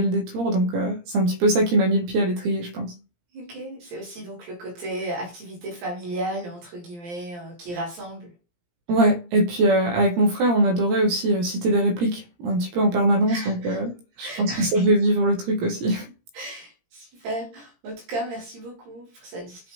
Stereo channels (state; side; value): late; left; 17 ms